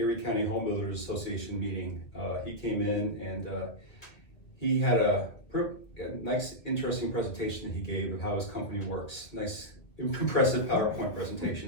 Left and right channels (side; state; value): right; late; 2.0 ms